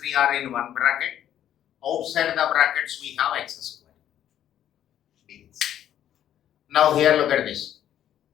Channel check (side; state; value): right; quieter; 10.9 dB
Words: are in one bracket. Outside the brackets we have x square. Now here look at this.